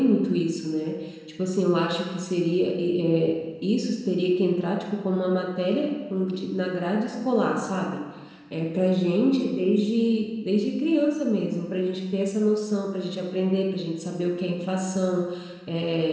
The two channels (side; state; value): both; identical; correlation 1.00